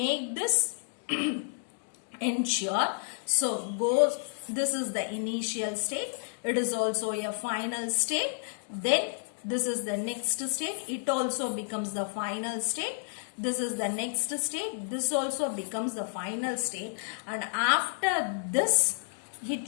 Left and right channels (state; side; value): silent; right; digital silence